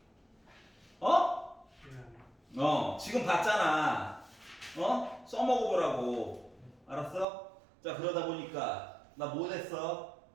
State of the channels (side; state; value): left; drops out; at 7.2 s